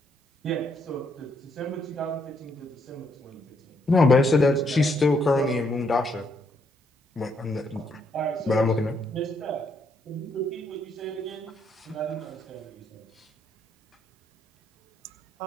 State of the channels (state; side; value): normal; both; correlation 0.74